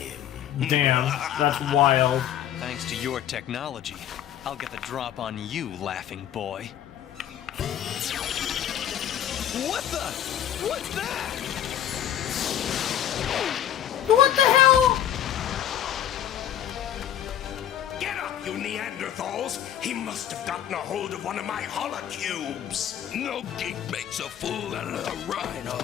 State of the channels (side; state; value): right; quieter; 10.7 dB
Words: Damn, that's wild. Thanks to your technology, I'll get the drop on you, laughing boy. What the? What's that? What the hell? Get up, you Neanderthals! He must have gotten a hold of one of my holocubes. No geek makes a fool out of the rhino.